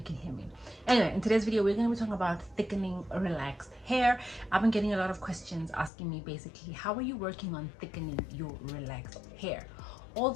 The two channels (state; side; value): drops out; right; at 5.9 s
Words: can hear me. Anyway, in today's video we're going to be talking about thickening relaxed hair. I've been getting a lot of questions asking me basically, how are you working on thickening your relaxed hair? All